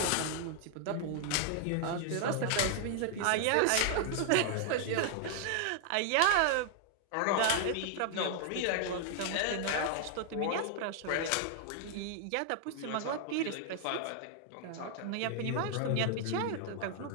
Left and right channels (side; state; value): both; different; correlation 0.00